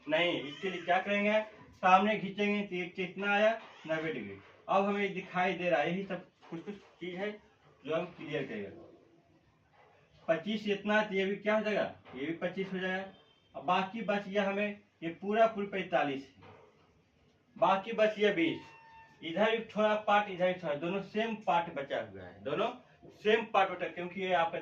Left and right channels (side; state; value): both; identical; correlation 1.00